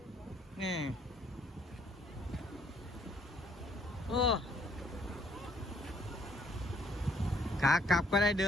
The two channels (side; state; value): both; normal; correlation 0.65